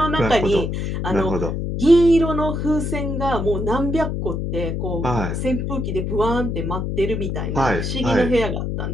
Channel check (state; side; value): noise; left; hum, 2 dB below the sound